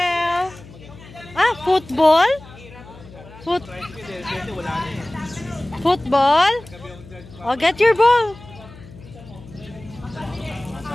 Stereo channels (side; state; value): left; noise; hum, 19 dB below the sound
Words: Ah, football? Football? Oh, get your ball.